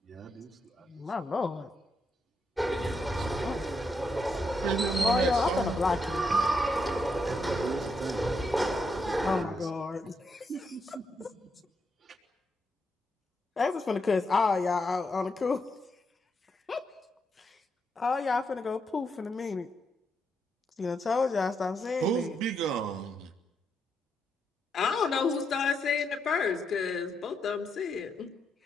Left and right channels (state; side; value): normal; both; correlation 0.81